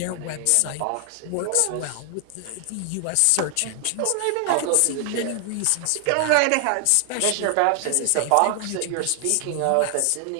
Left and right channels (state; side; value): different; both; correlation 0.00